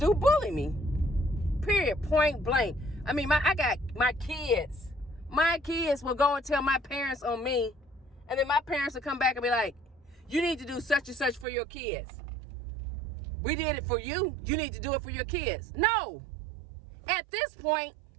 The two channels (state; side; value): drops out; left; at 11.5 s